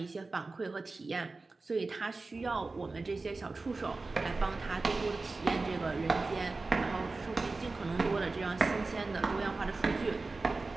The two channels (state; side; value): quieter; left; 3.6 dB